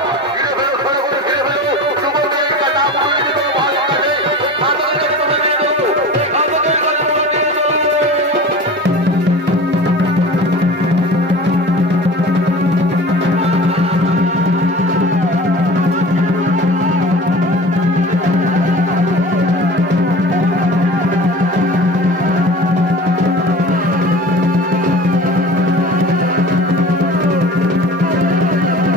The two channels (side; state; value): both; normal; correlation 0.37